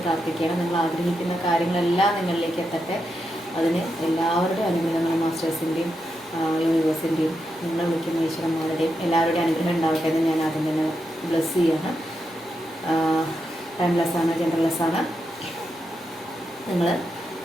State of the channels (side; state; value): both; normal; correlation 0.85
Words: പ്രാർത്ഥിക്കുകയാണ്. നിങ്ങൾ ആഗ്രഹിക്കുന്ന കാര്യങ്ങളെല്ലാം നിങ്ങളിലേക്ക് എത്തട്ടെ. അതിന് എല്ലാവരുടെയും അനുഗ്രഹങ്ങളും മാസ്റ്റേഴ്സിൻ്റെയും യൂണിവേഴ്സിൻ്റെയും നിങ്ങൾ വിളിക്കുന്ന ഈശ്വരന്മാരുടെയും എല്ലാവരുടെയും അനുഗ്രഹം ഉണ്ടാവട്ടെ എന്ന് ഞാൻ ആദ്യം തന്നെ ബ്ലെസ് ചെയ്യാണ്. ടൈംലെസ്സാണ്, ജെൻഡർലെസ്സാണ്. നിങ്ങൾ